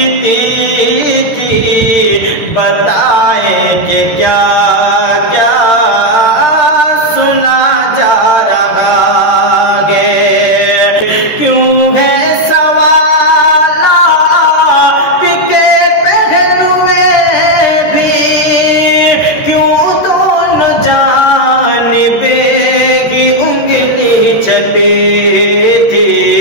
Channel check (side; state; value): right; late; 13 ms